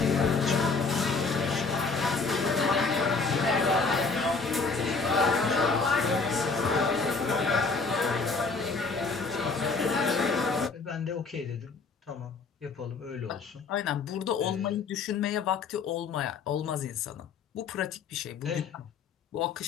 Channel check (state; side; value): quieter; right; 4.4 dB